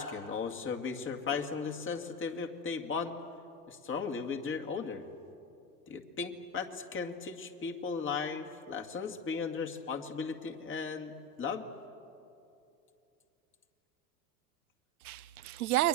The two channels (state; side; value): normal; both; correlation 0.19